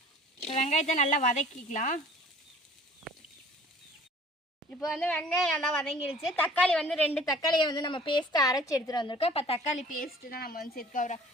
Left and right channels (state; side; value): normal; both; correlation 0.49